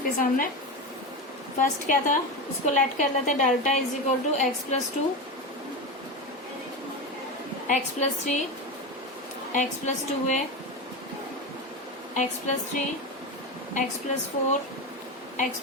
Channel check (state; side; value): normal; both; correlation 0.19